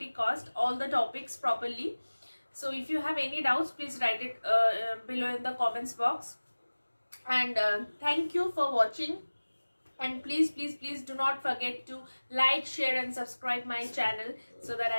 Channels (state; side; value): inverted; both; correlation -1.00